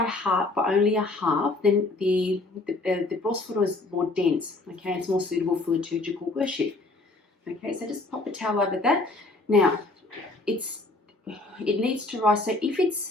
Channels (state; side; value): quieter; right; 3.1 dB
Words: half, by only a half, then the Prosphoro is more dense. Okay, it's more suitable for liturgical worship. Okay, so just pop a towel over that. Now, it needs to rise. So if